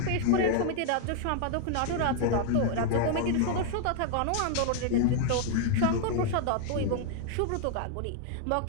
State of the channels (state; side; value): different; both; correlation -0.01